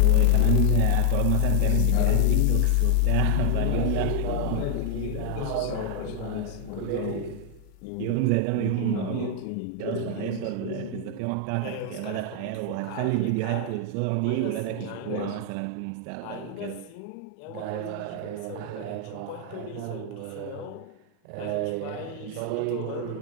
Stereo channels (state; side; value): different; both; correlation 0.00